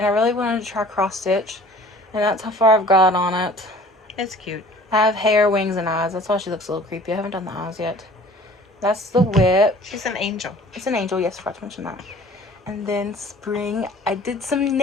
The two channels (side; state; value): both; normal; correlation 0.48